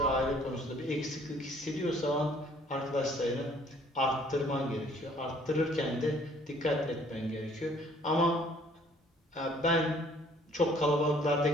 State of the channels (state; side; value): normal; both; correlation 0.58